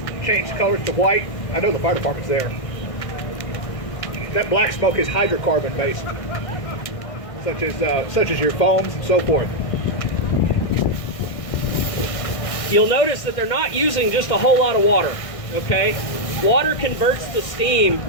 change colors to white. I know the fire department's there. That black smoke is hydrocarbon based, such as your foams and so forth. You'll notice that they're not using just a whole lot of water, okay? Water converts to steam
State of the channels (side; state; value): right; late; 1.6 ms